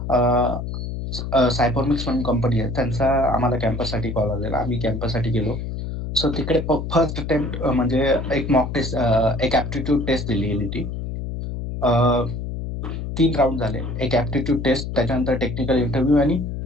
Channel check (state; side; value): noise; left; hum, 5 dB below the sound